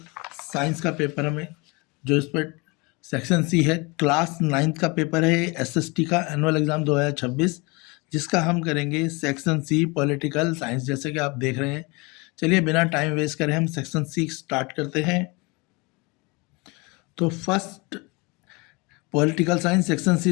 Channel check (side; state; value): right; quieter; 27.6 dB